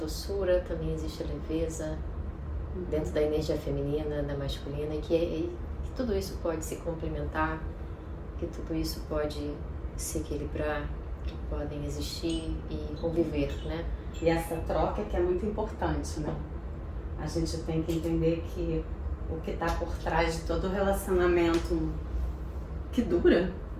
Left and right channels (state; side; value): identical; both; correlation 1.00